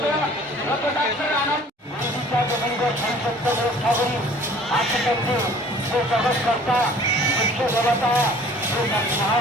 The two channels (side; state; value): both; normal; correlation 0.51